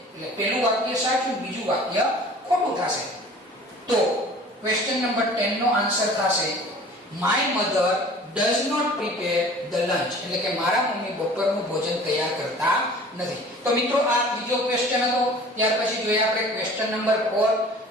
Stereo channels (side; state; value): both; normal; correlation 0.46